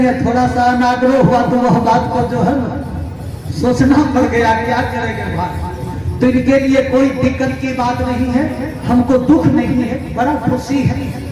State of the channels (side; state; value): both; identical; correlation 1.00